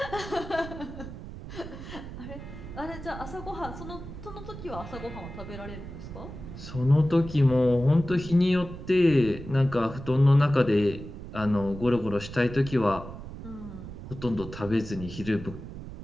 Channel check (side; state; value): right; noise; rumble, 11 dB below the sound